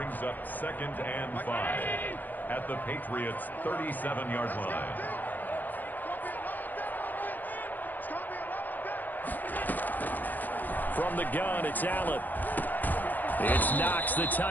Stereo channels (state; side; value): late; right; 0.085 ms